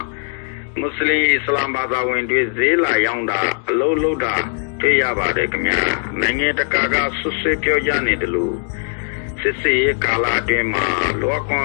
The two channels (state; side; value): silent; right; 58 dB below the other